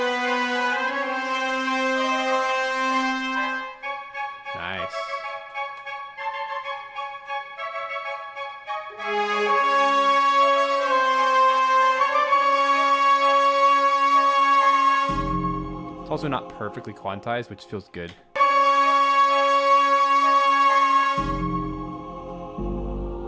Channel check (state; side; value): identical; both; correlation 1.00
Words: Nice. It's also not perfectly quantized, which feels good.